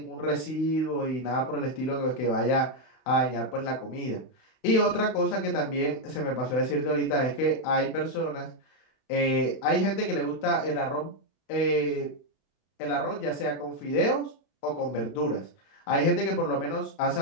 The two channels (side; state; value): right; late; 32 ms